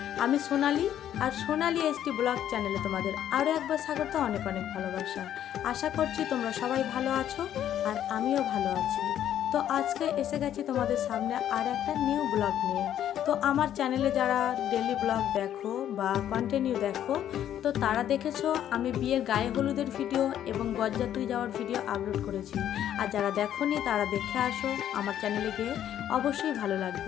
আমি সোনালি আর সোনালি এসটি ব্লগ চ্যানেলে তোমাদের আরও একবার স্বাগত, অনেক অনেক ভালোবাসা। আশা করছি তোমরা সবাই ভালো আছো আর আমিও ভালো আছি। তো আজকে এসে গেছি তোমাদের সামনে আর একটা নিউ ব্লগ নিয়ে। তো আমার চ্যানেলে যারা ডেলি ব্লগ দেখো বা কন্টিনিউ দেখো, তো তারা দেখেছো আমি বিয়ের গায়ে হলুদের ভিডিও এবং বরযাত্রী যাওয়ার ভিডিও আপলোড করেছি। আর যারা দেখোনি তারা দেখে আসো, আমার চ্যানেলে গিয়ে অবশ্যই ভালো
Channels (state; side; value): quieter; right; 10.8 dB